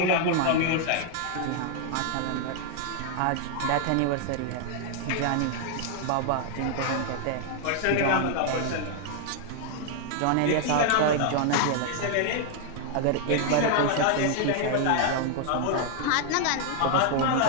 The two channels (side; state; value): both; different; correlation 0.00